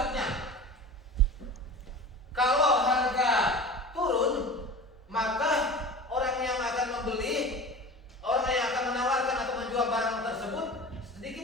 kalau harga turun, maka orang yang akan membeli, orang yang akan menawarkan atau menjual barang tersebut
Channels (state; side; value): normal; both; correlation 0.35